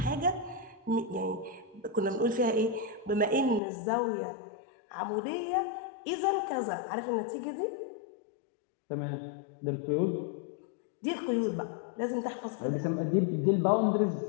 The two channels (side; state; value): right; drops out; at 3.6 s